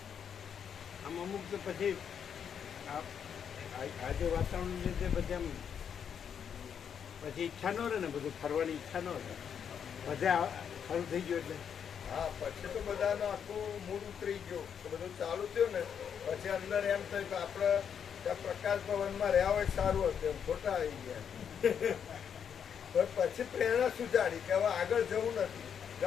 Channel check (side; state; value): right; quieter; 7.8 dB